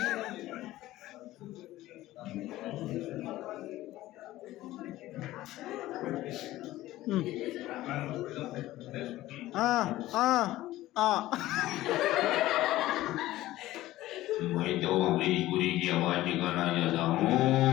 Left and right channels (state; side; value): quieter; right; 16.0 dB